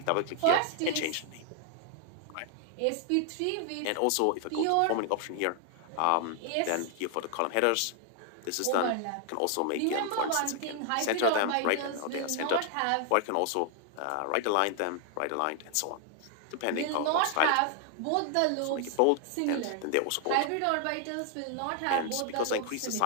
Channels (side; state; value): both; different; correlation 0.00